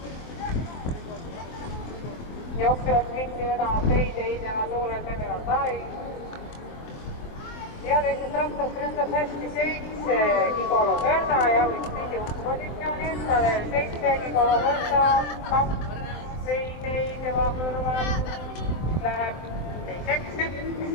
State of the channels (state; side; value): late; right; 23 ms